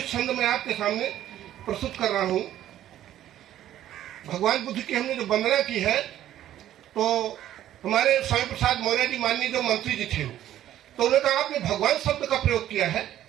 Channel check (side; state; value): left; quieter; 12.3 dB